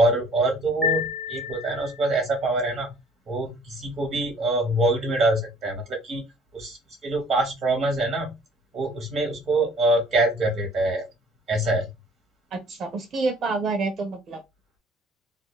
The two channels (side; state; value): both; normal; correlation 0.54